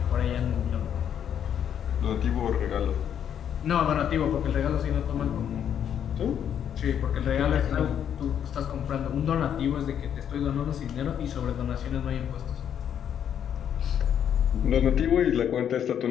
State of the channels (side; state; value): right; quieter; 9.0 dB